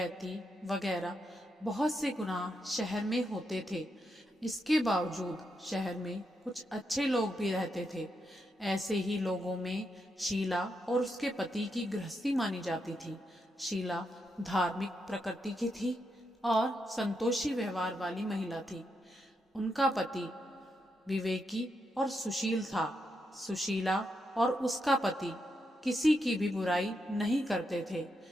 वगैरह बहुत से गुनाह शहर में होते थे। इसके बावजूद शहर में कुछ अच्छे लोग भी रहते थे। ऐसे ही लोगों में शीला और उसके पति की गृहस्थी मानी जाती थी। शीला धार्मिक प्रकृति की थी और संतोषी व्यवहार वाली महिला थी। उनका पति विवेकी और सुशील था। सुशीला और उसका पति किसी की भी बुराई नहीं करते थे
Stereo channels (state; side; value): normal; both; correlation 0.83